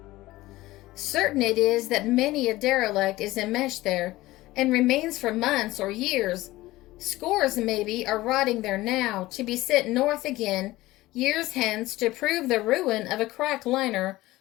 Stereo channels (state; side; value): quieter; right; 17.9 dB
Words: Certain it is that many a derelict is enmeshed there, and remains for months or years. Scores, maybe, are rotting there now, to be sent north again, years hence, to prove the ruin of a cracked liner